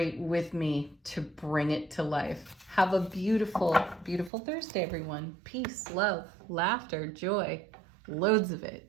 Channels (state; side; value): drops out; left; at 4.3 s